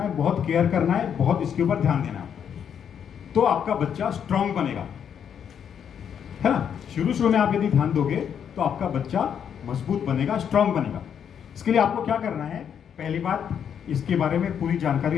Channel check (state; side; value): quieter; right; 8.2 dB